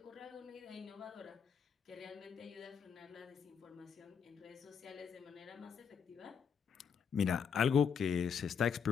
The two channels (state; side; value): quieter; right; 6.8 dB